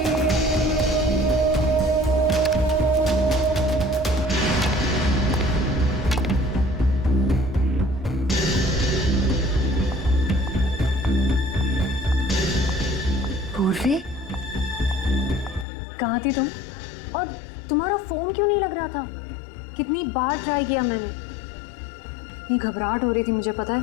पूर्वी, कहाँ थी तुम? और तुम्हारा फोन क्यों नहीं लग रहा था? कितनी बार ट्राई किया मैंने। इतनी घबराहट हो रही थी मुझे पता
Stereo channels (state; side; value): drops out; right; at 15.7 s